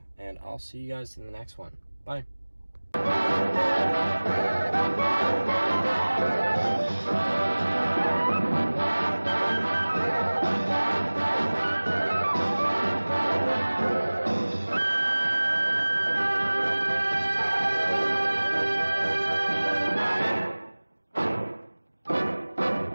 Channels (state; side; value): inverted; both; correlation -1.00